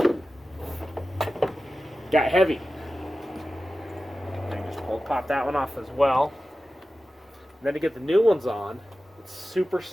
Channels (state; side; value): normal; both; correlation 0.94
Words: Got heavy. And just pop that one off as well. And then to get the new ones on, it's super